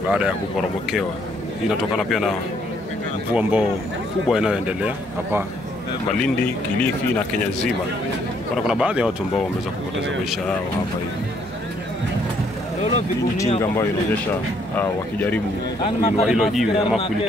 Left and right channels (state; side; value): normal; both; correlation 0.68